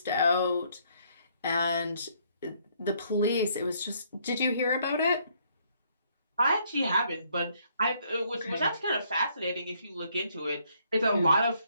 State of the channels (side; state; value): both; inverted; correlation -0.68